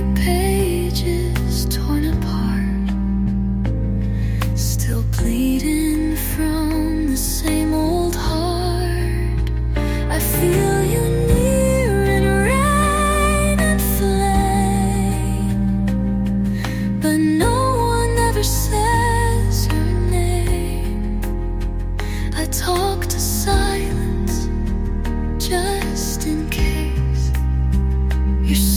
pages torn apart, still bleeding from the same old heart. I feel you near in rain and flame, but no one ever says her name. I talk to silence just in case you're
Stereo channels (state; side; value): identical; both; correlation 1.00